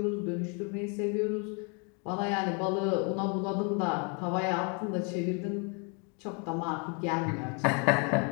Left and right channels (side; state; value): right; quieter; 36.1 dB